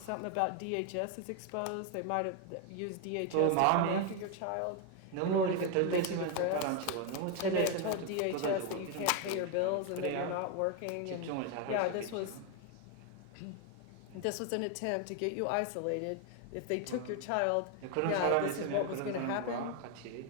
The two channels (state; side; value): different; both; correlation 0.01